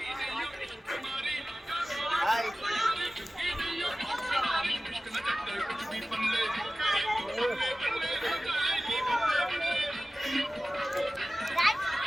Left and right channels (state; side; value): normal; both; correlation 0.96